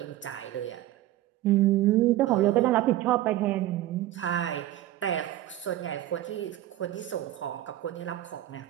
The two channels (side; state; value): left; quieter; 14.2 dB